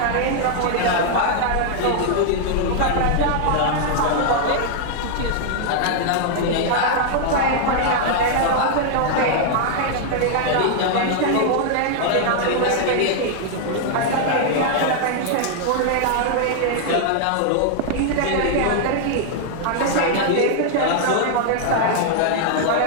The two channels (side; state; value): both; different; correlation -0.01